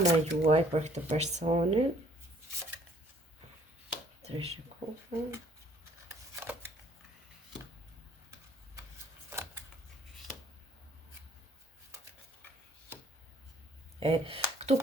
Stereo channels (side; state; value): both; normal; correlation 0.59